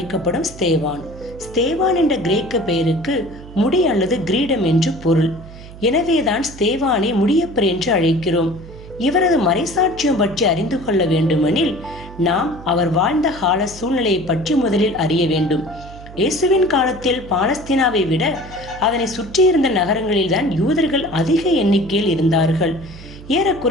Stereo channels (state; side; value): noise; right; hum, 16 dB below the sound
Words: ஸ்தேவான். ஸ்தேவான் என்ற கிரேக்க பெயருக்கு முடி அல்லது கிரீடம் என்று பொருள். எனவேதான் ஸ்தேவானை முடியப்பர் என்று அழைக்கிறோம். இவரது மறைசாட்சியம் பற்றி அறிந்து கொள்ள வேண்டுமெனில் நாம் அவர் வாழ்ந்த கால சூழ்நிலையை பற்றி முதலில் அறிய வேண்டும். இயேசுவின் காலத்தில் பாலஸ்தீனாவை விட அதனை சுற்றியிருந்த நகரங்களில்தான் யூதர்கள் அதிக எண்ணிக்கையில் இருந்தார்கள்.